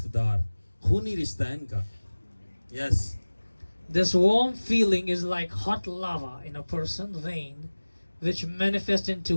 دار, خونی رشتہ ہے ان کا. یس. This warm feeling is like hot lava in a person's vein, which manifests in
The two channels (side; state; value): both; inverted; correlation -1.00